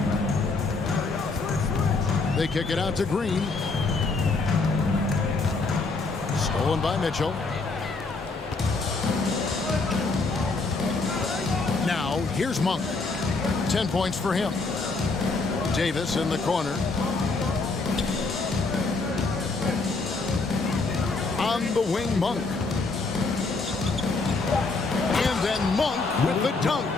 They kick it out to Green. Stolen by Mitchell. Now, here's Monk. 10 points for him. Davis in the corner. On the wing, Monk. And then Monk with the dunk.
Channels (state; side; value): quieter; right; 3.7 dB